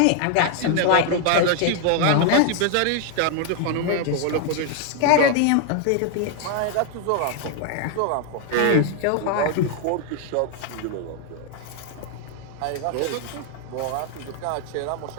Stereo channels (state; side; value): different; both; correlation 0.00